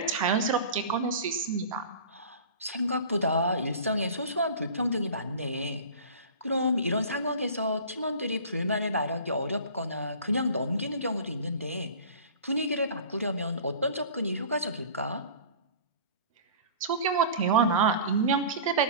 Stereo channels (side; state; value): both; inverted; correlation -0.40